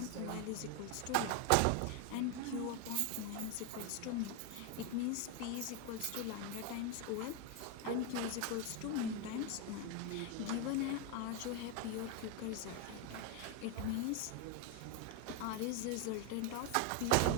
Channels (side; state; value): both; different; correlation 0.02